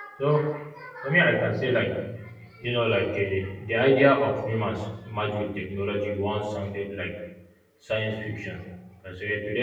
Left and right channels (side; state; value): both; identical; correlation 1.00